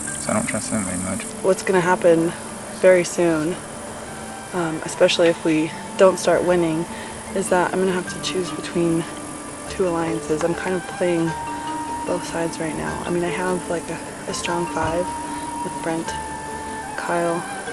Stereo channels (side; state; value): both; identical; correlation 1.00